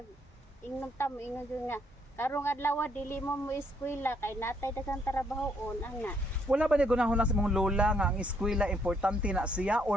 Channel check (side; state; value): both; normal; correlation 0.71